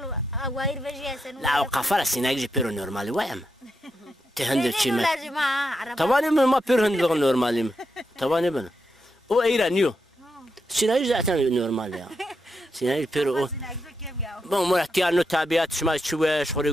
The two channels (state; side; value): normal; both; correlation 0.84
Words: واير فيجي سنو لا قفره سيناجي بيرو نورمالي وام تهندل شي ما لازم طبعا ما بيرو هندل نورمالي طبعا ابن او ايرا نيو سيناجي ذاتنا نورمالي سيناجي بيرو بون مرتيا نو تابعات شما شويش خوري